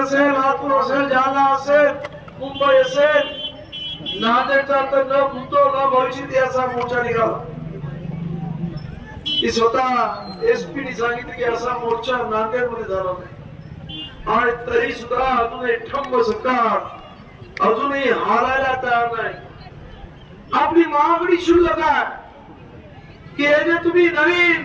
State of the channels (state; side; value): identical; both; correlation 1.00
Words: लातूर असेल, जालना असेल, मुंबई असेल, नांदेडचा तर न भूतो न भविष्यत याचा मोर्चा निघाला. ती स्वतः एसपीने सांगितलं की असा मोर्चा नांदेडमध्ये झाला नाही. आणि तरी सुद्धा अजूनही ठंब सरकार अजूनही हालायला तयार नाही. आपली मागणी शुल्लक आहे की हे जे तुम्ही नवीन